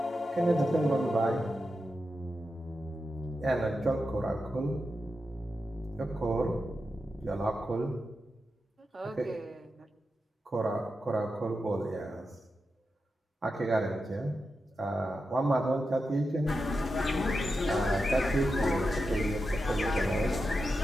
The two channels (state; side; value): normal; both; correlation 0.89